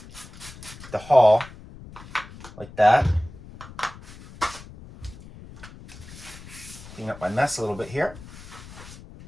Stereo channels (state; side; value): noise; left; rumble, 17 dB below the sound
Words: hull, like that. Clean up my mess a little bit here.